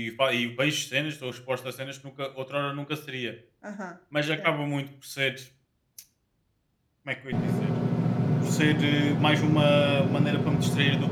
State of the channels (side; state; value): both; identical; correlation 1.00